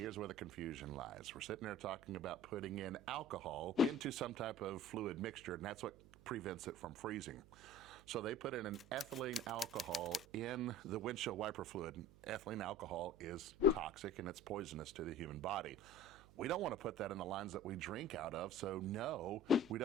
where the confusion lies. We're sitting there talking about putting in alcohol into some type of fluid mixture, and that's what prevents it from freezing. So they put in an ethylene alcohol in the windshield wiper fluid. Ethylene alcohol is toxic and it's poisonous to the human body. We don't want to put that in the lines that we drink out of, so no, we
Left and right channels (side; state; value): right; noise; hum, 22 dB below the sound